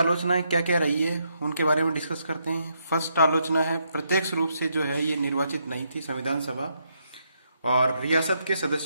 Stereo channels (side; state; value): both; inverted; correlation -0.76